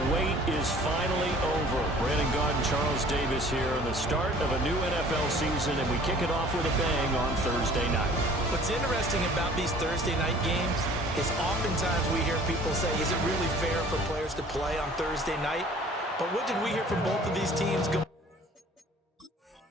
wait is finally over. Brandon Gaudin and Charles Davis here on the start of a new NFL season, and we kick it off with a bang on Thursday night. What's interesting about these Thursday night games is oftentimes we hear people say, is it really fair for players to play on Thursday night? But what did we hear from both of these teams?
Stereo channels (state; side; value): normal; both; correlation 0.51